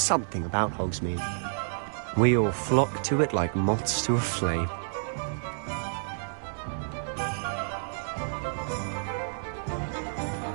something about Hogsmeade. We all flock to it like moths to a flame.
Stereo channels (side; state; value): left; silent; 58 dB below the other